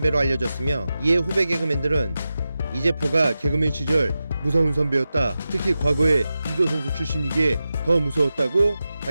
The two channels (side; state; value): both; inverted; correlation -0.93